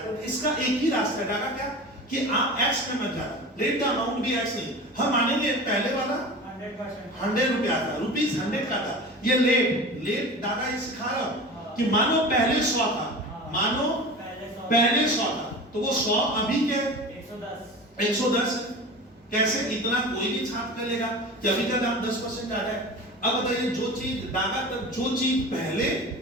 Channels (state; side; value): normal; both; correlation 0.34